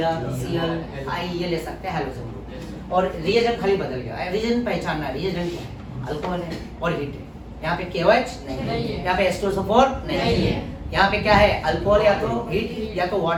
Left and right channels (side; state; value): both; identical; correlation 1.00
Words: Cl I, ये ले सकते हैं हाइड्रोजन ग्रुप, और रिएजेंट खाली बदल गया। रिएजेंट पहचानना, रिएजेंट क्या है? अल्कोहल है और हीट है। यहाँ पे KOH नहीं है, यहाँ पे H2SO4 नहीं है, यहाँ पे क्या है? अल्कोहल या तो हीट या तो